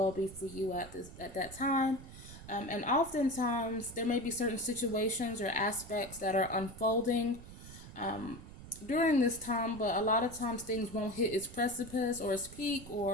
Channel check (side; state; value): right; noise; rumble, 15 dB below the sound